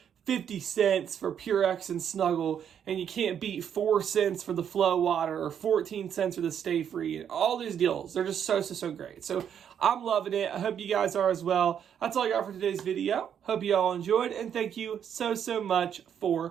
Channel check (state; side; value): quieter; left; 8.6 dB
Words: 50 cents for Purex and Snuggle, and you can't beat 4 cents for the Flow Water or 14 cents for the Stayfree. And all these deals, they're just so great. So I'm loving it. I hope you guys are as well. That's all I got for today's video. Hope you all enjoyed, and thank you so much